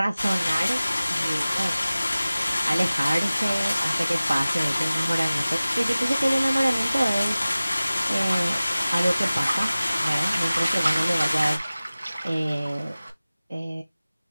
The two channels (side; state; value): both; inverted; correlation -0.97